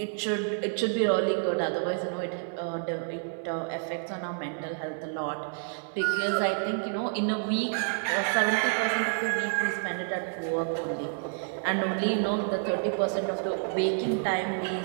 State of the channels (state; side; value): silent; left; 59 dB below the other